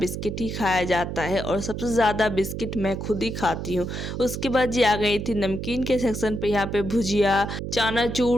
ही खाया जाता है और सबसे ज़्यादा बिस्किट मैं खुद ही खाती हूँ। उसके बाद जी आ गई थी नमकीन के सेक्शन पे। यहाँ पे भुजिया,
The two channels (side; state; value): right; noise; hum, 5 dB below the sound